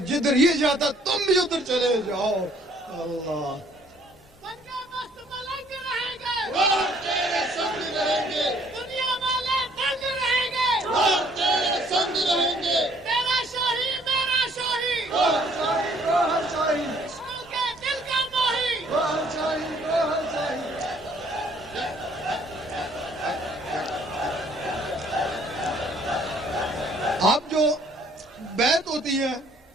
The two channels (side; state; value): both; normal; correlation 0.61